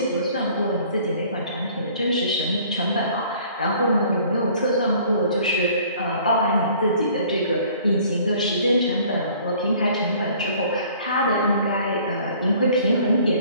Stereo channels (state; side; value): inverted; both; correlation -0.54